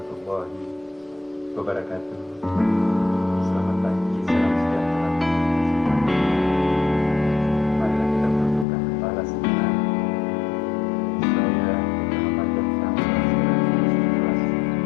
wabarakatuh. Selamat pagi, salam sejahtera. Marilah kita menundukkan kepala sejenak. Saya Muhammad Yoftam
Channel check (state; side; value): drops out; right; at 8.7 s